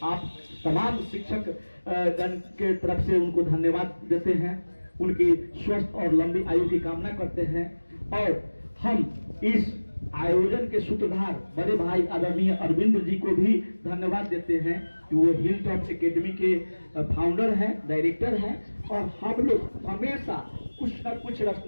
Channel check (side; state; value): both; inverted; correlation -1.00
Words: आप तमाम शिक्षक गण के तरफ से उनको धन्यवाद देते हैं, उनकी स्वस्थ और लंबी आयु की कामना करते हैं। और हम इस आयोजन के सूत्रधार बड़े भाई आदरणीय अरविंद जी को भी धन्यवाद देते हैं कि वो हिल टॉप एकेडमी के फाउंडर हैं, डायरेक्टर हैं, और हम लोग हमेशा कुछ न कुछ